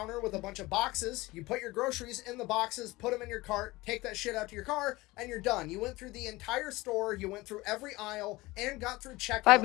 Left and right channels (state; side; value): quieter; right; 20.5 dB